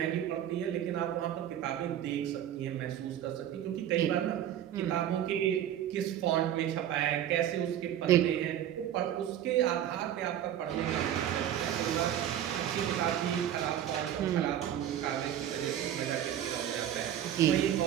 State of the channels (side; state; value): left; quieter; 10.9 dB